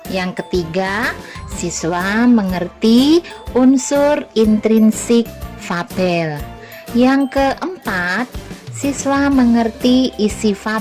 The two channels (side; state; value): both; identical; correlation 1.00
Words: Yang ketiga, siswa mengerti unsur intrinsik fabel. Yang keempat, siswa mengerti isi